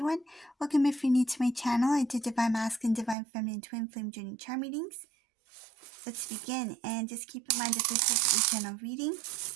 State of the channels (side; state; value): left; drops out; at 3.2 s